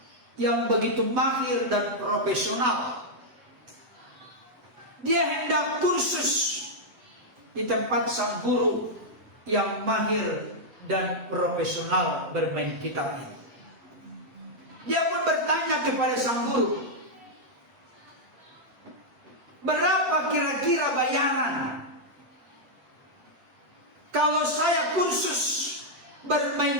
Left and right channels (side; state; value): left; late; 8.0 ms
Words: yang begitu mahir dan profesional. Dia hendak kursus di tempat sang guru yang mahir dan profesional bermain gitar ini. Dia pun bertanya kepada sang guru, berapa kira-kira bayaran kalau saya kursus